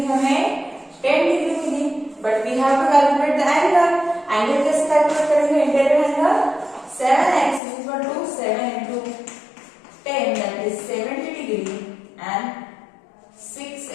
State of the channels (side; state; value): right; drops out; at 7.6 s